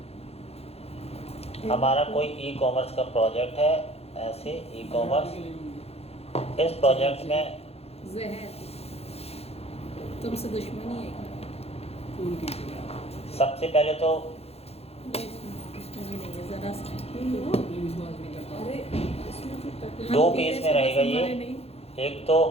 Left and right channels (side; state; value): right; late; 0.29 ms